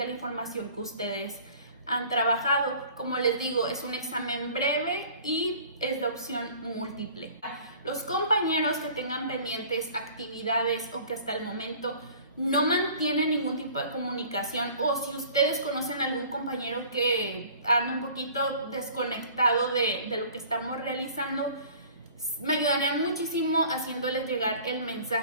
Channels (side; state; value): both; inverted; correlation -0.48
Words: información que ustedes han trabajado. Como les digo, es un examen breve y es de opción múltiple. Los compañeros que tengan pendientes actividades o que hasta el momento no mantienen ningún tipo de comunicación, o si ustedes conocen a algún compañero que anda un poquito desconectado de lo que estamos realizando, me ayudarían muchísimo haciéndoles llegar el